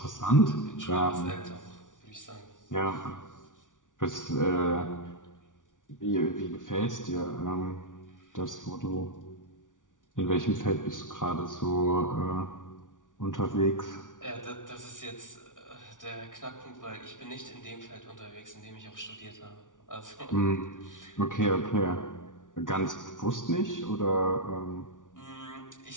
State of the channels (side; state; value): right; late; 0.87 ms